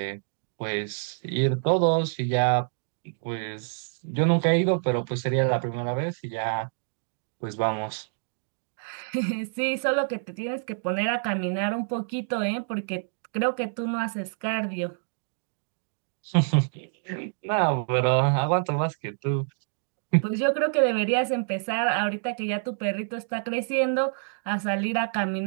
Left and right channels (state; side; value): silent; left; digital silence